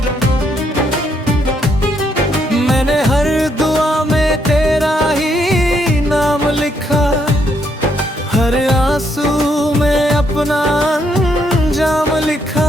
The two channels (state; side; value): normal; both; correlation 0.74